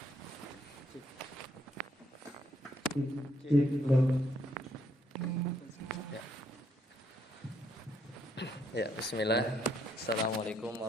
Ya. Ya, bismillah. Assalamualaikum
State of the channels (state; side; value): normal; both; correlation 0.72